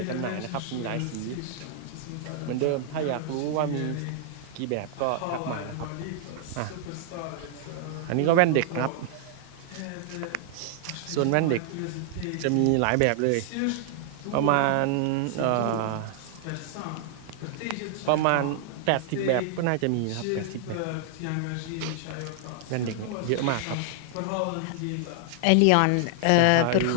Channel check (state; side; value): different; both; correlation 0.00